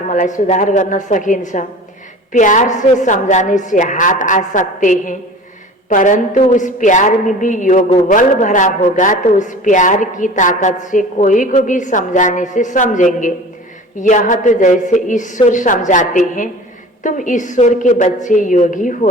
सुधार गर्न सकिन्छ। प्यार से समझाने से हाथ आ सकते हैं, परंतु उस प्यार में भी योग बल भरा होगा तो उस प्यार की ताकत से कोई को भी समझाने से समझेंगे। यह तो जैसे ईश्वर समझाते हैं, तुम ईश्वर के बच्चे योगी हो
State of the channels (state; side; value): normal; both; correlation 0.40